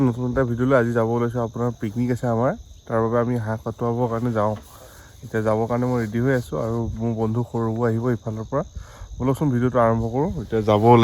নতুন এটা ভিডিঅ'লৈ আজি যাব ওলাইছোঁ আপোনাৰ পিকনিক আছে আমাৰ তাৰ বাবে আমি হাঁহ কটোৱাবৰ কাৰণে যাওঁ এতিয়া যাবৰ কাৰণে মই ৰেডি হৈ আছোঁ আৰু মোৰ বন্ধু সৰুবোৰ আহিব ইফালৰ পৰা বলকচোন ভিডিঅ'টো আৰম্ভ কৰোঁ এতিয়া যাব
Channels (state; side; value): identical; both; correlation 1.00